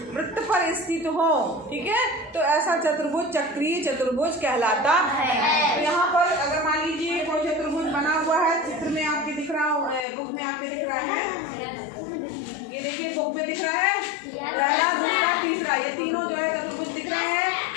वृत्त पर स्थित हो, ठीक है, तो ऐसा चतुर्भुज चक्रीय चतुर्भुज कहलाता है। तो यहाँ पर अगर मान लीजिए कोई चतुर्भुज बना हुआ है, चित्र में आपके दिख रहा हो, बुक में आपके दिख रहा है, ये देखिए बुक में दिख रहा है, पहला, दूसरा, तीसरा, ये तीनों जो है चतुर्भुज दिख रहे हैं।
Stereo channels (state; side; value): drops out; right; at 10.1 s